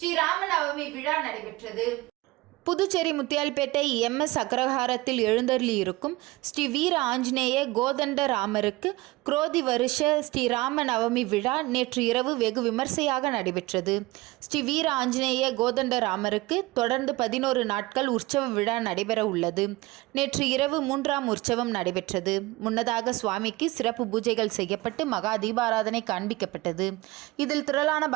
ராமநவமி விழா நடைபெற்றது. புதுச்சேரி முத்தியால்பேட்டை MS அக்ரஹாரத்தில் எழுந்தருளி இருக்கும் ஸ்ரீ வீர ஆஞ்சநேய கோதண்ட ராமருக்கு குரோதி வருஷ ஸ்ரீ ராம நவமி விழா நேற்று இரவு வெகு விமர்சையாக நடைபெற்றது. ஸ்ரீ வீர ஆஞ்சநேய கோதண்ட ராமருக்கு தொடர்ந்து 11 நாட்கள் உற்சவ விழா நடைபெற உள்ளது. நேற்று இரவு 3ஆம் உற்சவம் நடைபெற்றது. முன்னதாக சுவாமிக்கு சிறப்பு பூஜைகள் செய்யப்பட்டு மகா தீபாராதனை காண்பிக்கப்பட்டது. இதில் திரளான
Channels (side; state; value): left; quieter; 20.6 dB